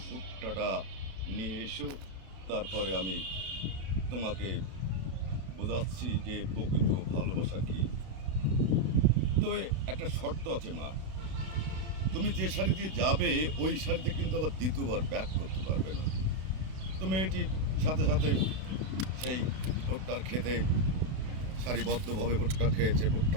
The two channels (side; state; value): left; late; 32 ms